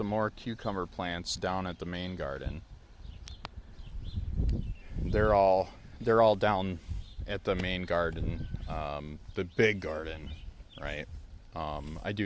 more cucumber plants down at the main garden. They're all down at the main garden, the big garden, right? I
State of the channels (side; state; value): both; identical; correlation 1.00